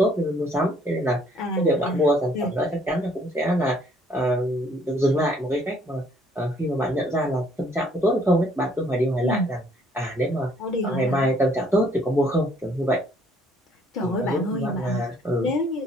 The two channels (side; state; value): both; normal; correlation 0.63